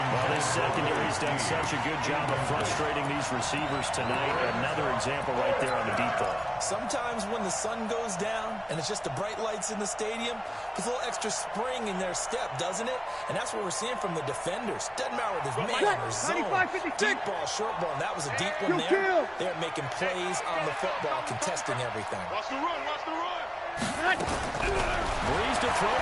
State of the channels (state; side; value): identical; both; correlation 1.00